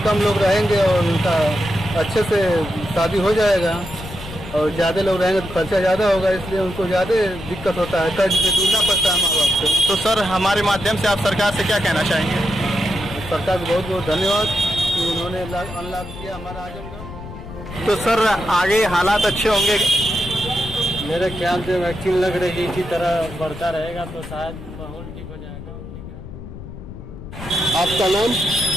कम लोग रहेंगे और उनका अच्छे से शादी हो जाएगा, और ज़्यादा लोग रहेंगे तो खर्चा ज़्यादा होगा, इसलिए उनको ज़्यादा दिक्कत होता है, कर्ज से दूरना पड़ता है माँ बाप से। तो सर हमारे माध्यम से आप सरकार से क्या कहना चाहेंगे? सरकार को बहुत बहुत धन्यवाद कि उन्होंने अनलॉक किया हमारा आजमगढ़। तो सर आगे हालात अच्छे होंगे? मेरे ख्याल से वैक्सीन लग रही है, इसी तरह बढ़ता रहेगा तो शायद माहौल ठीक हो जाएगा। आपका नाम?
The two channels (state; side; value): noise; left; rumble, 12 dB below the sound